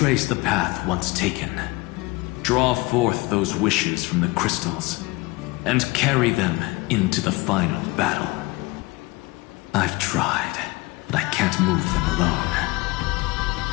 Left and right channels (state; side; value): quieter; right; 22.9 dB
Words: the path once taken. Draw forth those wishes from the crystals, and carry them into the final battle. I've tried, but I can't move them alone.